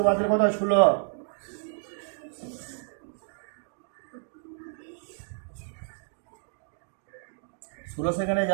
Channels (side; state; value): left; silent; digital silence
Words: বাদ দিলে কত হয়? 16। সেকেন্ডে